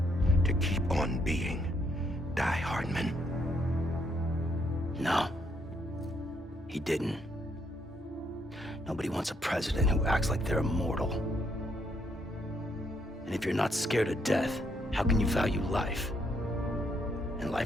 To keep on being Die Hardman. No. He didn't. Nobody wants a president who acts like they're immortal. And if you're not scared of death, how can you value life? And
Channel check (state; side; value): normal; both; correlation 0.73